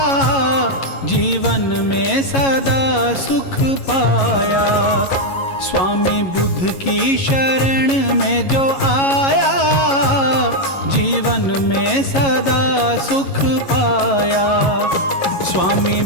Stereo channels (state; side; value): late; right; 11 ms